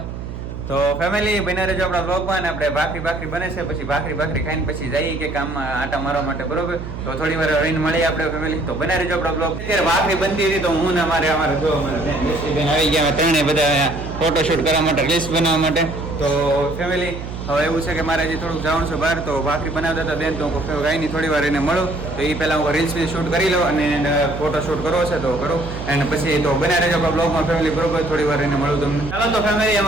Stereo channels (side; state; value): right; noise; hum, 8 dB below the sound